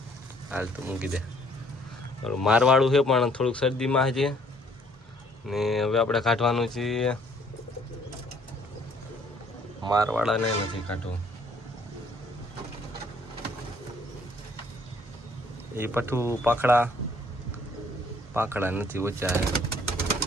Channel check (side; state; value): both; normal; correlation 0.62